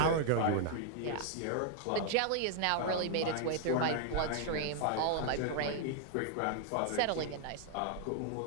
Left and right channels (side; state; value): both; different; correlation 0.00